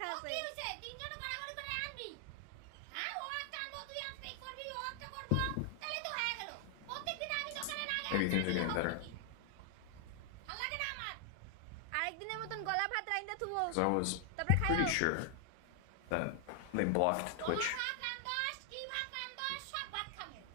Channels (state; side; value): different; both; correlation 0.00